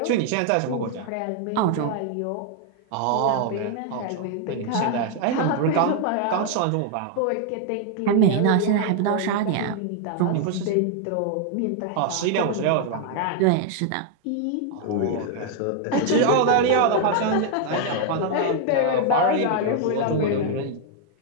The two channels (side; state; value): both; different; correlation 0.00